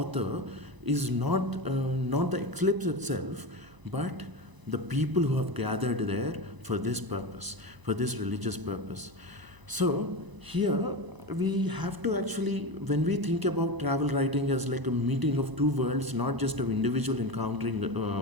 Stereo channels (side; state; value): left; late; 1.0 ms